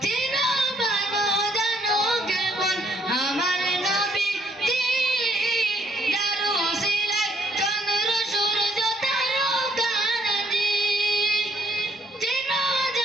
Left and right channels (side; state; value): both; normal; correlation 0.67